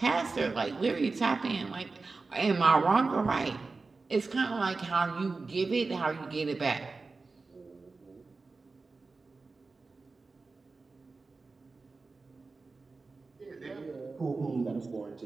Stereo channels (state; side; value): quieter; left; 3.9 dB